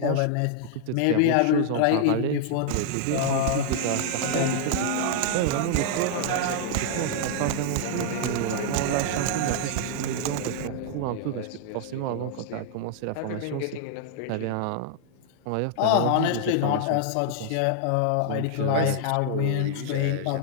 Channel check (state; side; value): different; both; correlation -0.01